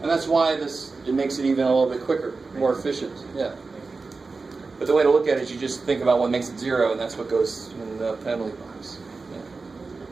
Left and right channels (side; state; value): left; quieter; 4.1 dB